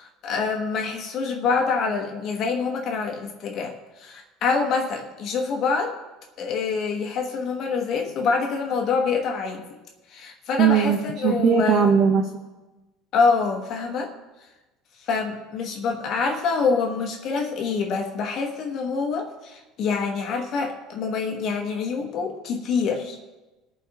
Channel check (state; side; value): normal; both; correlation 0.51